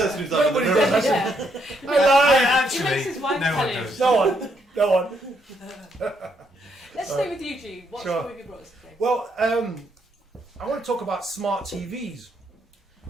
who's Nobody does. Yeah. I He makes his wife no tell one him. does. No one. Let's stay with you, G. What Sure. story have you brought us today? Well, I want to talk about smart TVs,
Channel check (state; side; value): normal; both; correlation 0.75